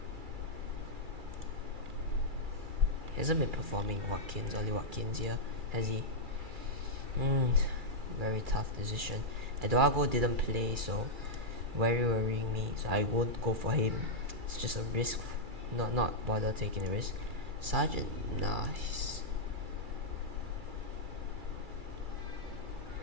He hasn't been performing. Ollie Watkins here, has he? Very tough decision. Eduardo didn't play, so very worrying me. So I won't go for him. It's just a risk. Not bother taking the risk. Sargent, nice.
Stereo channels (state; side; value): late; left; 2.3 ms